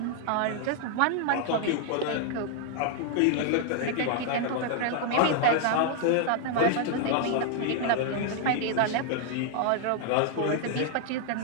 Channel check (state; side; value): different; both; correlation 0.00